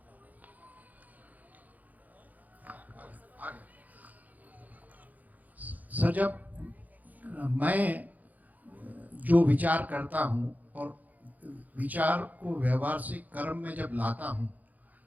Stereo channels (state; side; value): late; left; 0.080 ms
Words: सर, जब मैं जो विचार करता हूँ और विचार को व्यवहार से कर्म में जब लाता हूँ